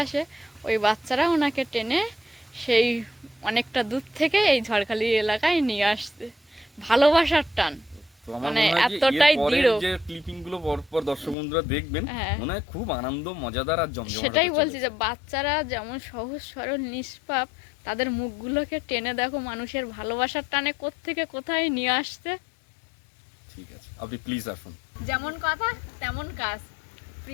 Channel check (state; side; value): drops out; right; at 11.4 s